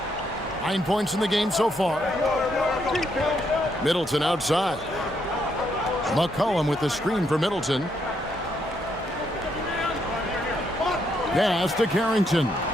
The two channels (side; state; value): both; normal; correlation 0.76